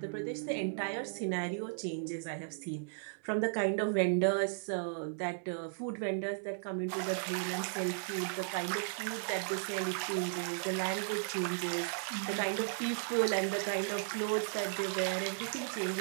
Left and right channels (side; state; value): left; silent; digital silence